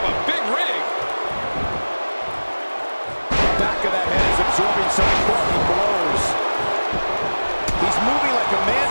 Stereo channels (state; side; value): inverted; both; correlation -1.00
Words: a big rig. Back of that head is absorbing some quality blows. He's moving like a man